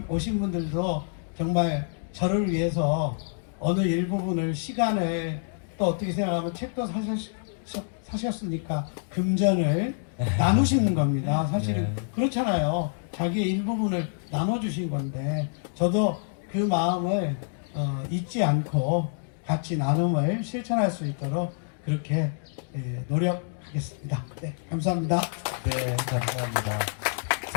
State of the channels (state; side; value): silent; right; digital silence